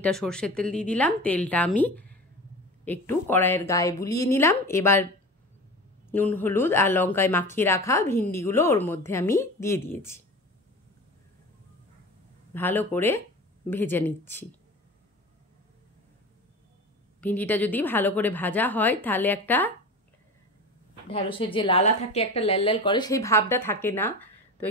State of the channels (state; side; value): normal; both; correlation 0.33